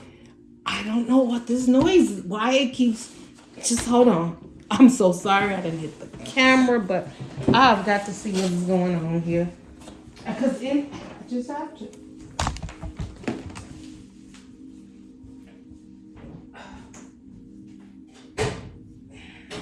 know what this noise is. Why it keeps, just hold on. I'm so sorry I didn't hit the camera, but I've got to see what's going on here. Because I just have to.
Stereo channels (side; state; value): both; identical; correlation 1.00